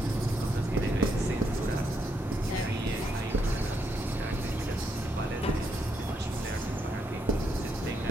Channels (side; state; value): both; normal; correlation 0.77